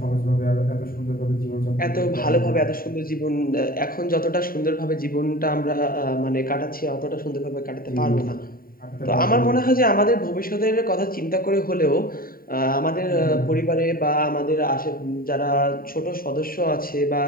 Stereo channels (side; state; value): right; late; 0.42 ms